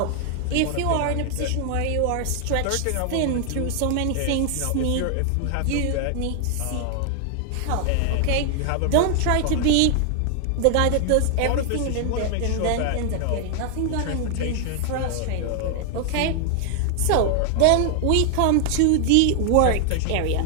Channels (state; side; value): different; both; correlation 0.00